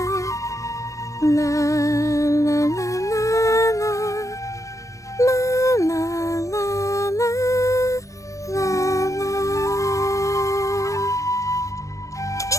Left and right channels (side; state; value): right; late; 0.15 ms